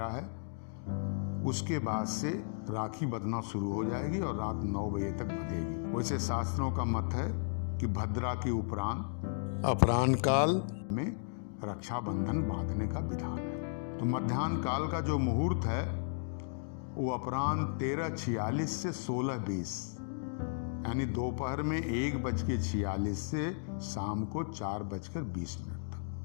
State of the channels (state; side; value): silent; right; digital silence